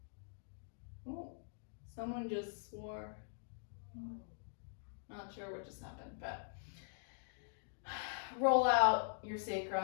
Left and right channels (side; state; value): right; silent; digital silence